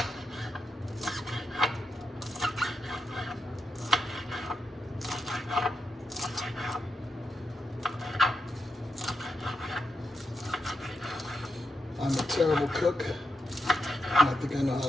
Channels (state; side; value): normal; both; correlation 0.85